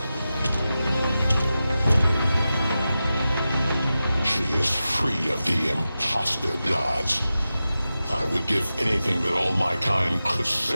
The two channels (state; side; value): inverted; both; correlation -0.93